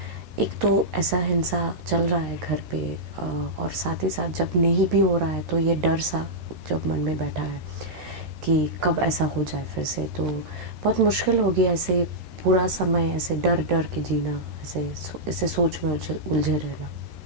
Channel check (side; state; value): left; late; 13 ms